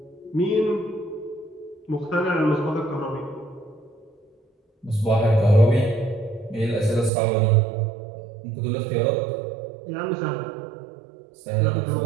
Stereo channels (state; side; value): drops out; left; at 7.1 s